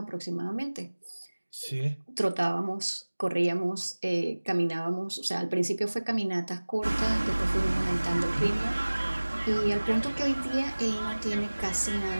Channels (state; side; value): inverted; both; correlation -1.00